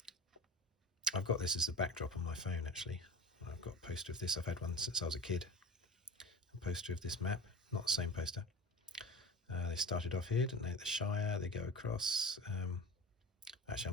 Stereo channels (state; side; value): normal; both; correlation 0.34